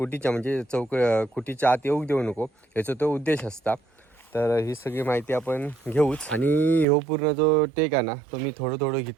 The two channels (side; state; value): left; drops out; at 6.9 s